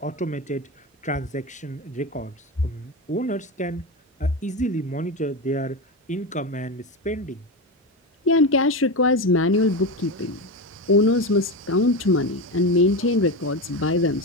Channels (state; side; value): normal; both; correlation 0.18